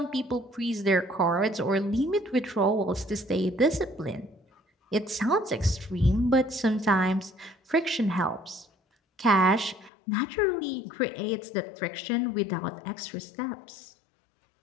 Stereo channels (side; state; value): right; drops out; at 9.9 s